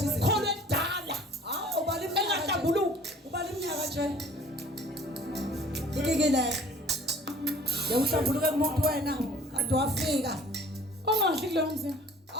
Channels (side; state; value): both; normal; correlation 0.50